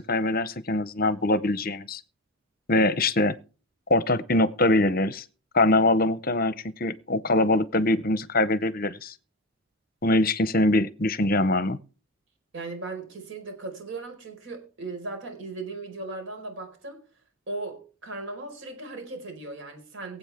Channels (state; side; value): normal; both; correlation 0.16